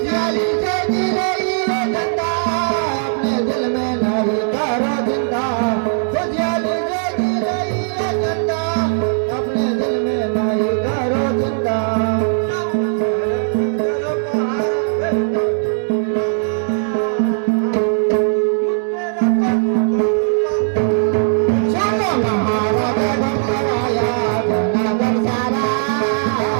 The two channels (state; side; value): silent; left; digital silence